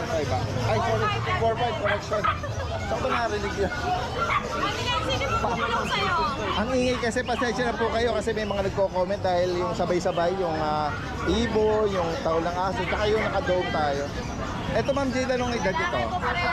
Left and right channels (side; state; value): both; identical; correlation 1.00